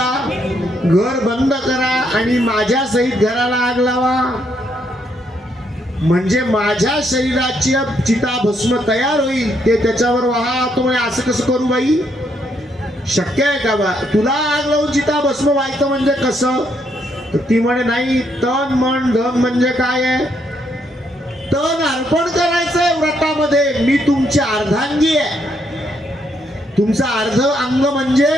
घर बंद करा आणि माझ्या सहित घराला आग लावा, म्हणजे माझ्या शरीराची चिता भस्म तयार होईल, ते त्याच्यावर वाहा. तो म्हणे असं कसं करू बाई, शक्य आहे का बा? तुला आग लावून चिता भस्म व्हायचं म्हणजे कसं? तर ती म्हणे नाही, तन मन धन म्हणजे काय आहे? तन अर्पण करायचंय व्रतामध्ये. मी तुमची अर्धांगी आहे, तुमचा अर्ध अंग म्हणजे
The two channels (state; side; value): normal; both; correlation 0.74